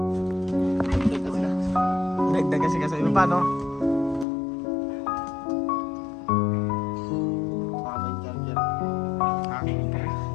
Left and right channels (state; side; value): drops out; right; at 4.2 s